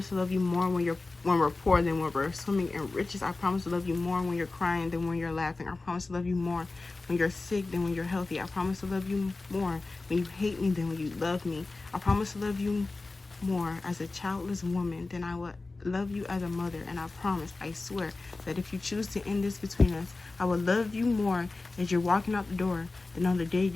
to love you more when we're poor than when we're swimming in riches. I promise to love you more when you're crying than when you're laughing. I promise to love you more when you're sick than when you're healthy. I promise to love you more when you hate me than when you love me. I promise to love you more as a childless woman than I would love you as a mother. And I promise, I swear, that if you choose to end this between us, I will love you more as you're walking out the door than on the day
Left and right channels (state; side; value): quieter; right; 3.4 dB